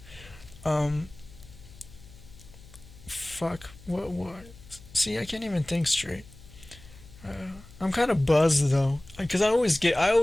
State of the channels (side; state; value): left; noise; hum, 20 dB below the sound